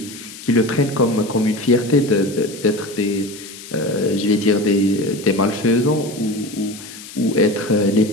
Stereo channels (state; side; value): noise; left; hiss, 15 dB below the sound